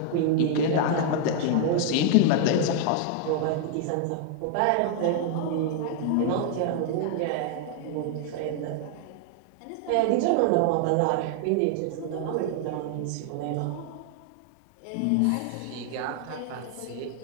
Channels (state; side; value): different; both; correlation 0.00